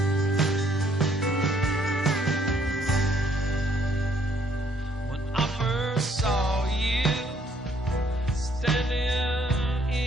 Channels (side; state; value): both; normal; correlation 0.66